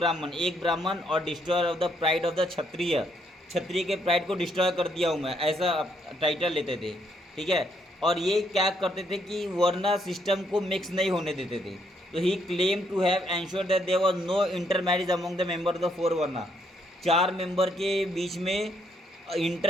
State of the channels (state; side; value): normal; both; correlation 0.72